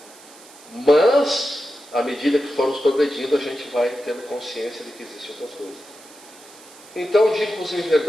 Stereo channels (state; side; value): noise; right; hiss, 22 dB below the sound